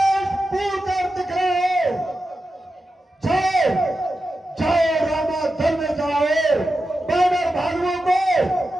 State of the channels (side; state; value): both; normal; correlation 0.90